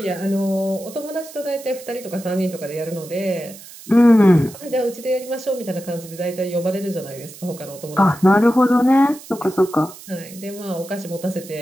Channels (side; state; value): right; noise; hiss, 17 dB below the sound